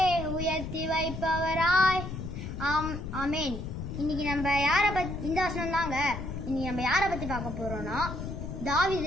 உயர்த்தி வைப்பவராய். ஆமேன். இன்னைக்கு நம்ம யாரை பற்றி, இந்த வசனம் தாங்க இன்னைக்கு நம்ம யாரை பற்றி பார்க்க போகிறோம்னா தாவீது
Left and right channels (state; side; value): noise; left; rumble, 6 dB below the sound